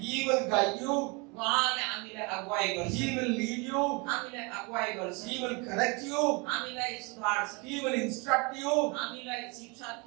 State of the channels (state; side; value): quieter; left; 29.3 dB